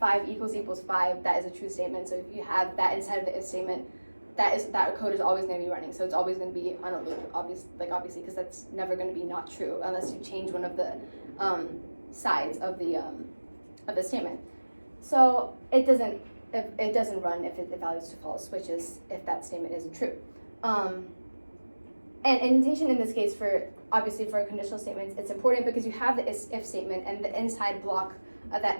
equals 5, that is a true statement. So if you have that inside of the if statement, that code is always going to be running. So it's always going to be on a loop, obviously, because that's never going to be not true unless you change one of the sides of the statement. So it doesn't run if it evaluates to false, which is if that statement isn't true. And indentation in this case, obviously for conditional statements, it's important because you have the if statement, and the inside block of that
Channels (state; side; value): inverted; both; correlation -1.00